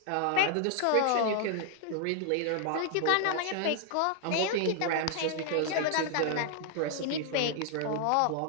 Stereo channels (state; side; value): different; both; correlation 0.00